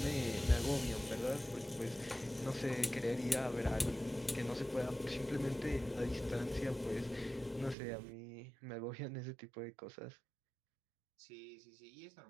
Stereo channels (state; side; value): drops out; left; at 7.8 s